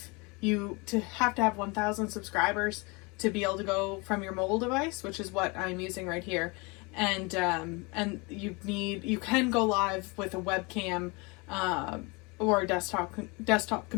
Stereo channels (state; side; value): quieter; right; 28.0 dB